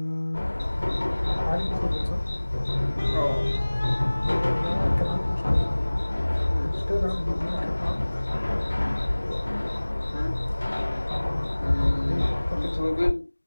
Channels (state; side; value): inverted; both; correlation -1.00